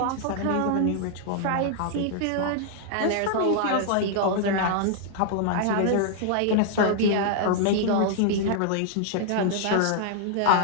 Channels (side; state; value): both; different; correlation -0.01